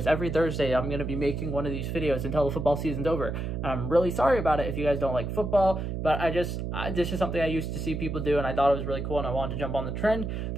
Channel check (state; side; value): noise; right; hum, 3 dB below the sound